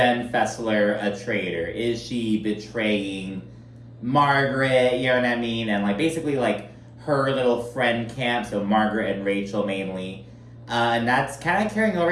Fessler a traitor? Is she betraying Margaret, you know what I mean? And like basically like her little friend camp, so Margaret and Rachel mainly. And that's kind of carrying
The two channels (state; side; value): identical; both; correlation 1.00